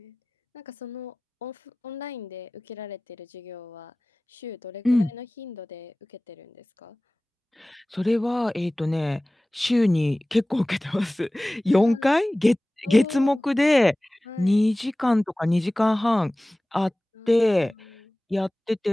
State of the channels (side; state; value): both; normal; correlation 0.98